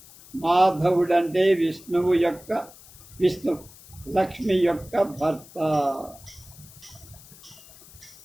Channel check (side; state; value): left; noise; hiss, 21 dB below the sound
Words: మాధవుడంటే విష్ణు లక్ష్మి యొక్క భర్త.